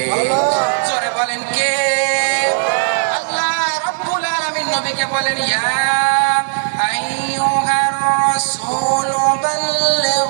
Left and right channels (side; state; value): left; silent; 68 dB below the other